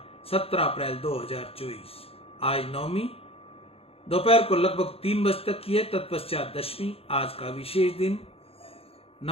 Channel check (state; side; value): late; right; 0.28 ms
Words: 17 अप्रैल 2024। आज नवमी दोपहर को लगभग 3 बजे तक की है, तत्पश्चात दशमी। आज का विशेष दिन